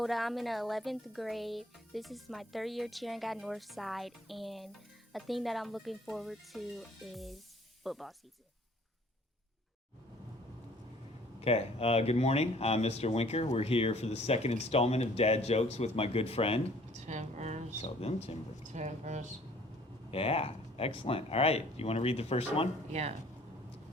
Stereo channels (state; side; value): normal; both; correlation 0.56